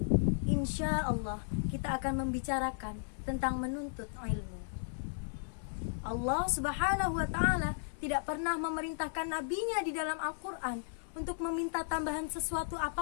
insya Allah kita akan membicarakan tentang menuntut ilmu. Allah Subhanahu wa ta'ala tidak pernah memerintahkan nabinya di dalam Al-Quran untuk meminta tambahan sesuatu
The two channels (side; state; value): right; silent; 54 dB below the other